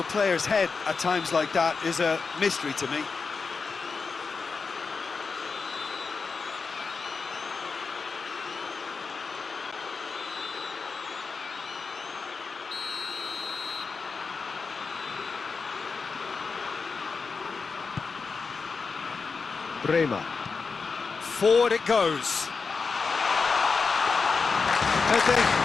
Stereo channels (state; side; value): quieter; right; 4.8 dB